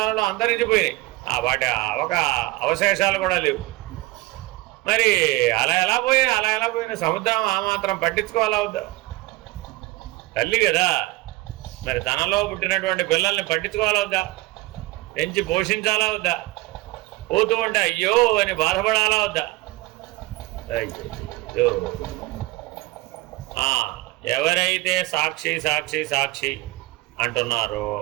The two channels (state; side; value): quieter; left; 20.2 dB